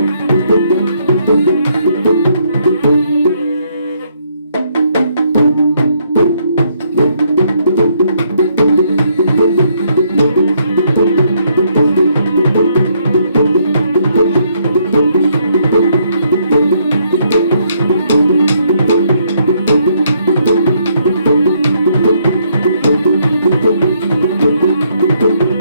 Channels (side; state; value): both; inverted; correlation -0.71